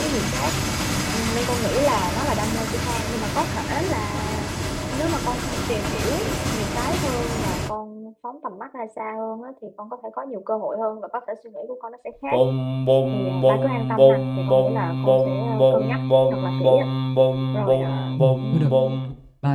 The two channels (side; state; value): both; identical; correlation 1.00